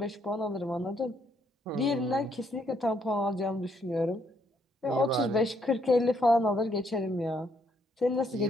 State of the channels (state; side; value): normal; both; correlation 0.72